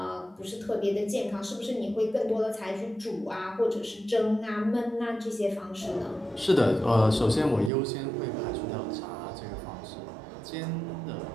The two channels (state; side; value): drops out; left; at 7.7 s